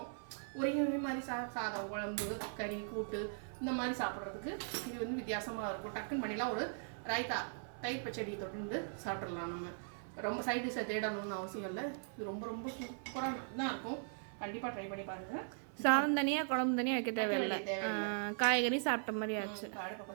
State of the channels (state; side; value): silent; left; 52 dB below the other